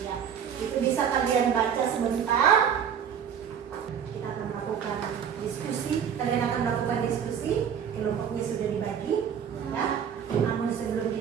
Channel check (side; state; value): left; quieter; 8.1 dB